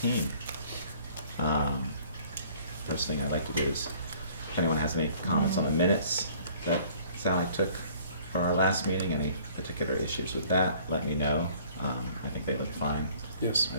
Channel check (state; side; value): inverted; both; correlation -0.54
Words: First thing I'd like to do is, if anyone has any comments on the minutes that Sally took for our last meeting, any particular issues with that, let me know. I think they look fine. Yes.